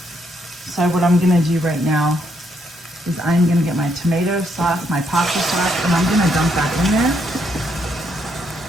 So what I'm gonna do right now is I'm gonna get my tomato sauce, my pasta sauce, and I'm gonna dump that in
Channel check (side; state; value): both; normal; correlation 0.75